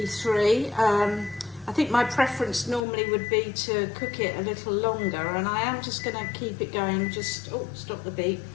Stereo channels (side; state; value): right; drops out; at 2.9 s